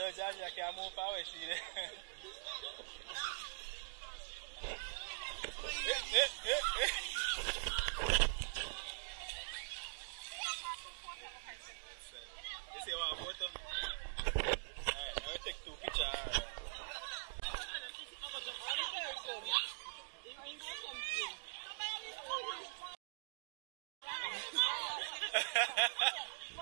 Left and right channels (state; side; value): silent; left; digital silence